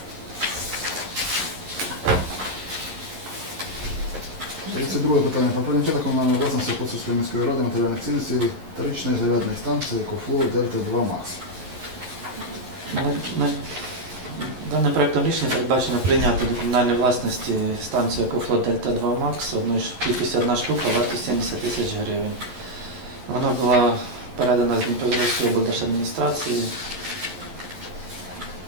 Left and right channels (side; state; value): left; late; 11 ms